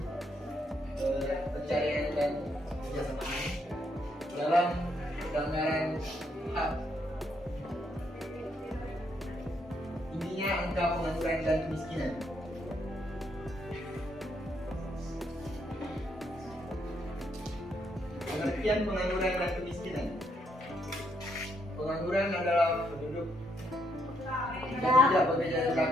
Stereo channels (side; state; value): both; normal; correlation 0.75